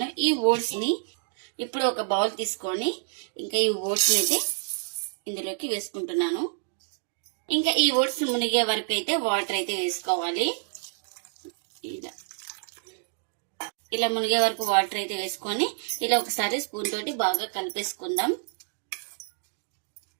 ఈ ఓట్స్ ని ఇప్పుడు ఒక బౌల్ తీసుకొని ఇంకా ఈ ఓట్స్ ని అయితే ఇందులోకి వేసుకుంటున్నాను. ఇంకా ఈ ఓట్స్ మునిగే వరకు అయితే వాటర్ అయితే వేసుకోవాలి. ఇలా మునిగే వరకు వాటర్ అయితే వేసుకొని ఇలా ఒకసారి స్పూన్ తోటి బాగా కలిపేసుకుందాం.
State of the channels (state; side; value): silent; left; 59 dB below the other